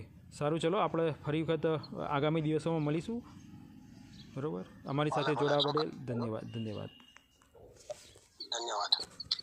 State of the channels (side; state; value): both; identical; correlation 1.00